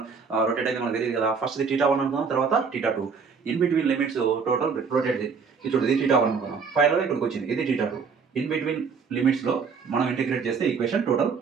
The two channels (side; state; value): left; quieter; 5.6 dB